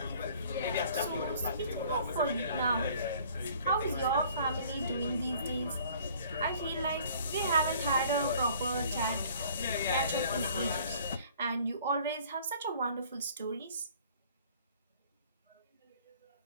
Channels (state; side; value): inverted; both; correlation -0.54